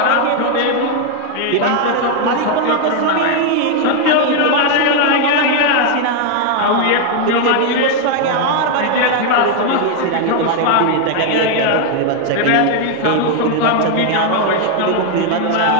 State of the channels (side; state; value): both; different; correlation 0.01